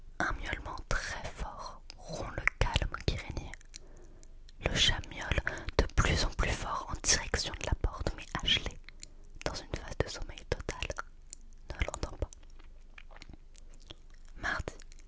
Un miaulement très fort rompt le calme qui régnait. Le chat miaule de plus en plus fort en direction de la porte, mais Ashley, dans une phase de sommeil total, ne l'entend pas. Mardi,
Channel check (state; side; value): identical; both; correlation 1.00